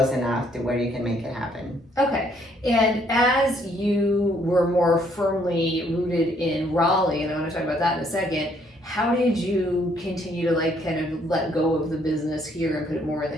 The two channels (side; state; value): both; normal; correlation 0.67